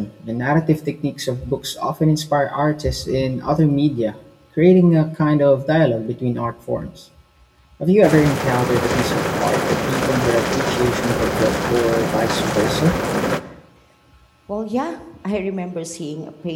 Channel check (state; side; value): identical; both; correlation 1.00